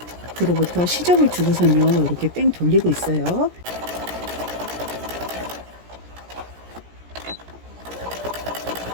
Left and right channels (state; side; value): late; left; 17 ms